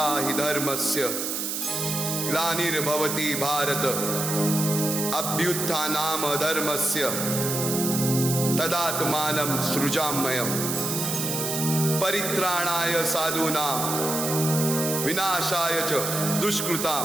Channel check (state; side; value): noise; right; hiss, 2 dB below the sound